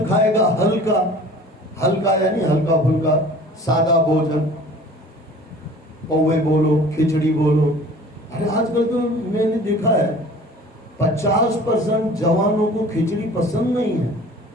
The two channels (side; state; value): both; normal; correlation 0.46